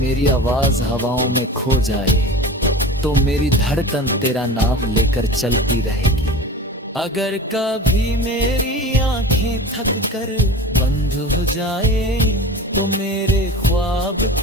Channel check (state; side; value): normal; both; correlation 0.35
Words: आवाज हवाओं में खो जाए तो मेरी धड़कन तेरा नाम लेकर चलती रहेगी। अगर कभी मेरी आंखें थक कर बंद हो जाए तो मेरे ख्वाब